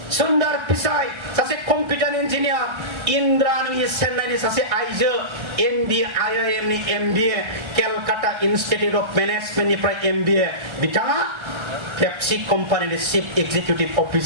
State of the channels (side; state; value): left; late; 1.3 ms